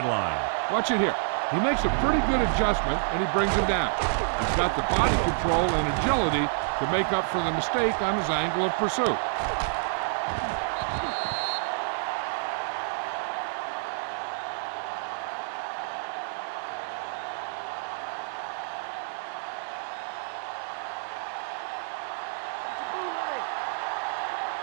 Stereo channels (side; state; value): left; silent; digital silence